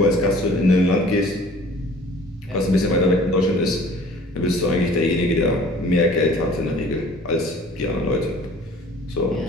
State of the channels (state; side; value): normal; both; correlation 0.49